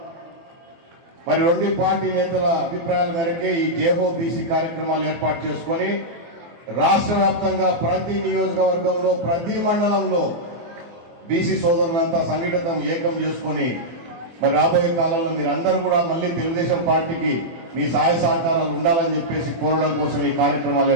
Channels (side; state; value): left; late; 24 ms